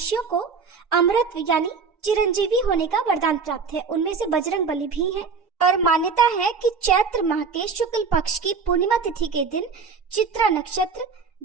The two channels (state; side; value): quieter; left; 5.3 dB